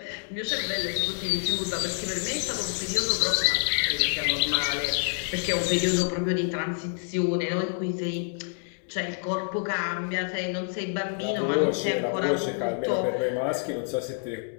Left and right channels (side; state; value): right; silent; digital silence